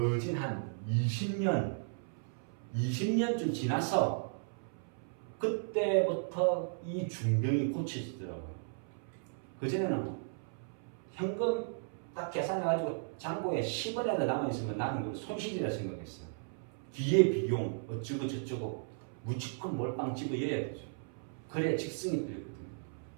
한 20년쯤 지나서 그때부터 이 중병이 고쳐지더라고요. 그전에는 현금 딱 계산해가지고 잔고에 10원이라도 남아있으면 나는 그걸 손실이라 생각했어요. 뒤에 비용 어쩌고 저쩌고 무조건 몰빵 집어여야 되죠. 그래야 직성이 들거든요.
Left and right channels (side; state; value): left; silent; 54 dB below the other